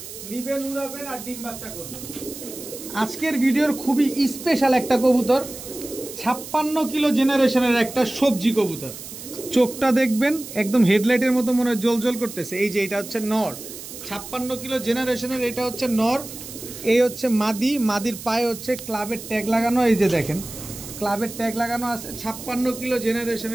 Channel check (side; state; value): right; noise; hiss, 12 dB below the sound